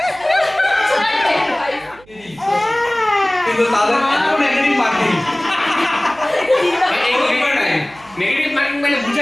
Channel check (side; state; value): right; noise; hum, 26 dB below the sound